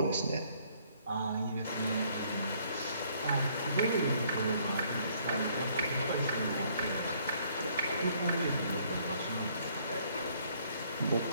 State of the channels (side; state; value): both; inverted; correlation -0.64